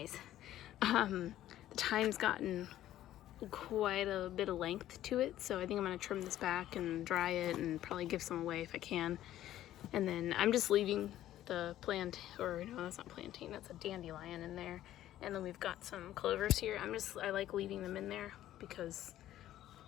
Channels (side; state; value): right; quieter; 13.1 dB